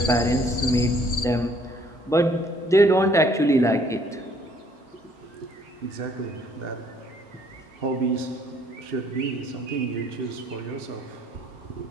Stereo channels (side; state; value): both; normal; correlation 0.62